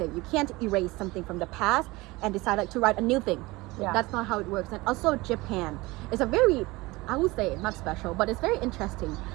you can't erase something from the past and decide like to write a new thing. Yeah. That's not how it works. And also Japan is a very I would say not special, but it's very interesting.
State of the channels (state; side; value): quieter; left; 21.7 dB